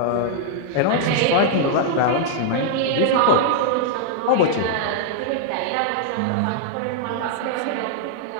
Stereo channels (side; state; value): both; different; correlation -0.01